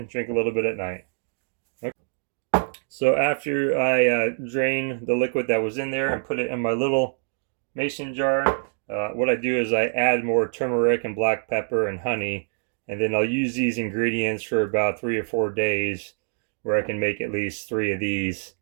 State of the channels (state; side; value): silent; left; digital silence